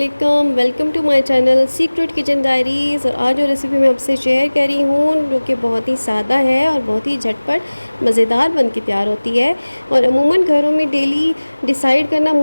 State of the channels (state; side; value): inverted; both; correlation -1.00